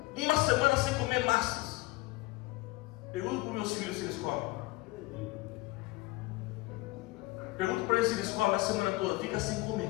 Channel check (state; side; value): quieter; right; 21.6 dB